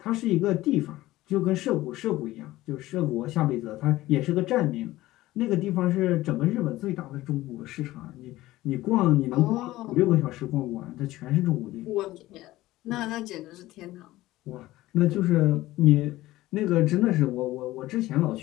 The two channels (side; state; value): right; quieter; 16.9 dB